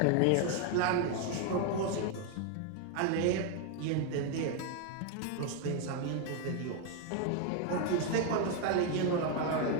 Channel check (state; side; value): different; both; correlation 0.01